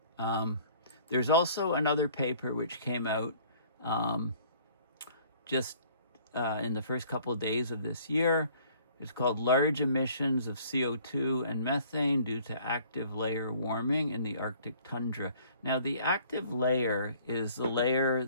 There's also another paper which came out just in the first couple of days of this year. It's called Large Emissions of CO2 and Methane Due to Active Layer Warming in the Arctic Tundra. Now, the active layer is the layer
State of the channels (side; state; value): both; inverted; correlation -0.55